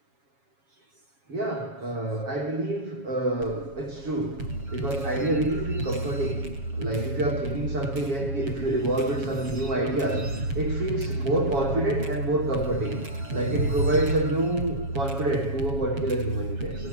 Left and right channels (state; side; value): late; left; 7.3 ms